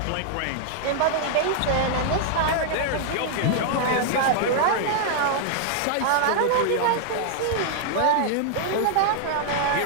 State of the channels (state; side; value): different; both; correlation -0.01